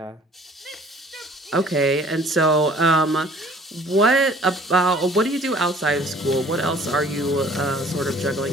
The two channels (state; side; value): normal; both; correlation 0.53